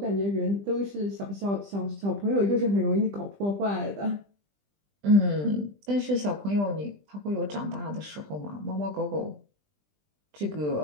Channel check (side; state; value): left; late; 20 ms